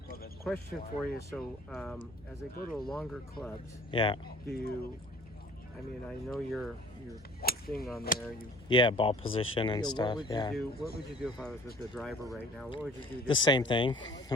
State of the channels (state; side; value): normal; both; correlation 0.51